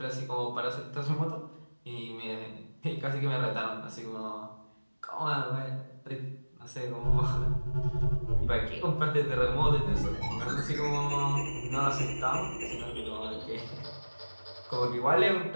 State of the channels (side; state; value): both; inverted; correlation -1.00